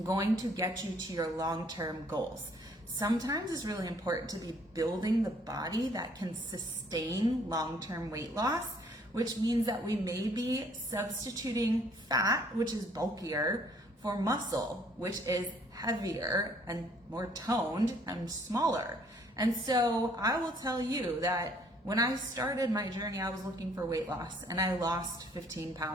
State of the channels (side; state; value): both; normal; correlation 0.62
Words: going to get you to your long-term goals. Sometimes it's really important to be building the body that can sustain long-term weight loss, which means that we may be substituting fat, which is bulkier, for muscle, which is heavier and more toned and smaller. And so I will tell you that when I started my journey, I was looking for weight loss, and I lost 15